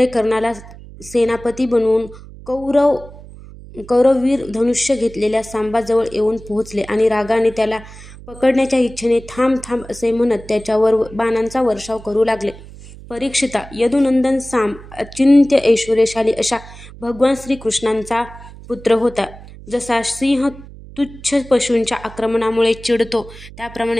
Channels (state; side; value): noise; right; hum, 17 dB below the sound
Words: कर्णाला सेनापती बनवून कौरववीर धनुष्य घेतलेल्या सांबाजवळ येऊन पोहोचले आणि रागाने त्याला पकडण्याच्या इच्छेने थांब थांब असे म्हणत त्याच्यावर बाणांचा वर्षाव करू लागले. परीक्षिता, यदुनंदन सांब अचिंत्य ऐश्वर्यशाली अशा भगवान श्रीकृष्णांचा पुत्र होता. जसा सिंह तुच्छ पशूंच्या आक्रमणामुळे चिडतो